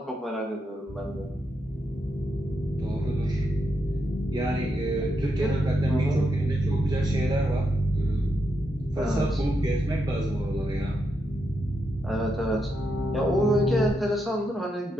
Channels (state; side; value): normal; both; correlation 0.83